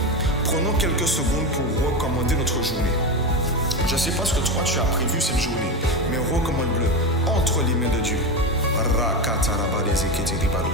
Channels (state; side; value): normal; both; correlation 0.17